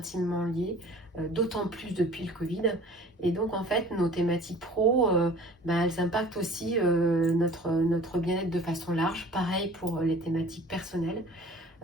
liés, d'autant plus depuis le Covid. Et donc en fait, nos thématiques pro, elles impactent aussi notre bien-être de façon large. Pareil pour les thématiques personnelles.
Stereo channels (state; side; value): normal; both; correlation 0.46